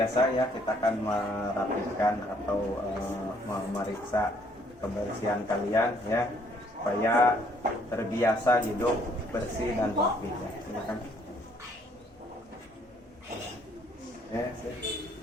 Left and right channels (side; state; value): both; normal; correlation 0.65